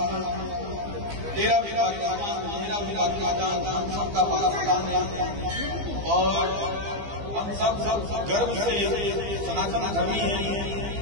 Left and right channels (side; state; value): left; late; 15 ms